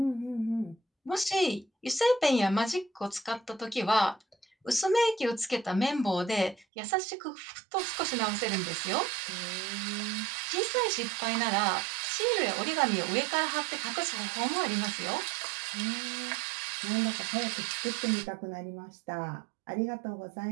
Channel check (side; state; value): left; drops out; at 6.7 s